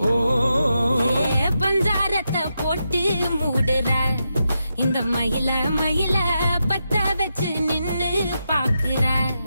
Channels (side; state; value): both; inverted; correlation -0.86